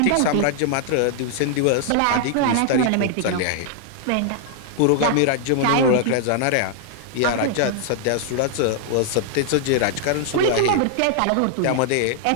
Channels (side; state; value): both; different; correlation 0.00